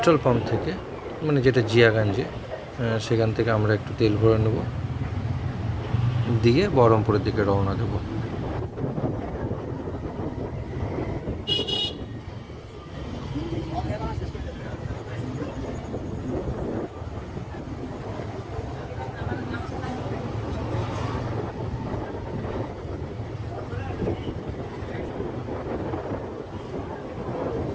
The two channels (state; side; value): identical; both; correlation 1.00